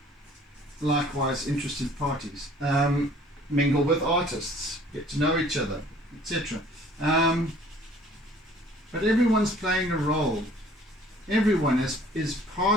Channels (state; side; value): normal; both; correlation 0.54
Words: likewise interested parties. Mingle with artists. Get to know each other, etc. But everyone's playing a role. Everyone is